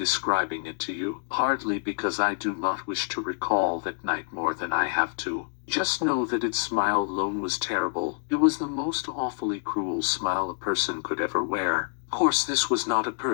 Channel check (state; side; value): silent; right; digital silence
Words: it to you, partly because I do not wish to recall that night more than I have to. Just know that its smile alone was terrible. It was the most awfully cruel smile a person could ever wear. Of course this was not a